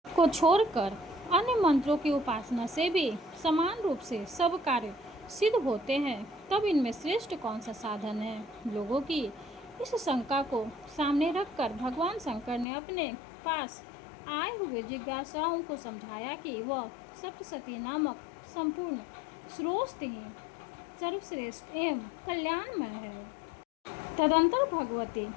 को छोड़कर अन्य मंत्रों की उपासना से भी समान रूप से सब कार्य सिद्ध होते हैं, तब इनमें श्रेष्ठ कौन सा साधन है। लोगों की इस शंका को सामने रखकर भगवान शंकर ने अपने पास आए हुए जिज्ञासाओं को समझाया कि वह सप्तशती नामक संपूर्ण स्रोत ही सर्वश्रेष्ठ एवं कल्याणमय है। तदंतर भगवती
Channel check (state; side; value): drops out; right; at 12.7 s